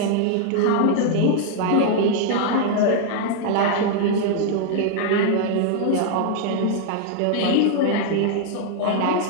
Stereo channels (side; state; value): both; different; correlation 0.00